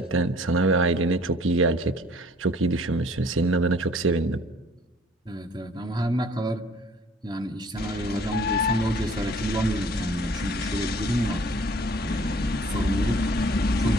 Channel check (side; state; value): both; normal; correlation 0.54